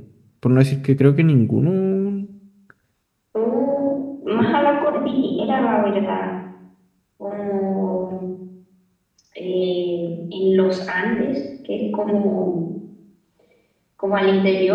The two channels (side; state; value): both; identical; correlation 1.00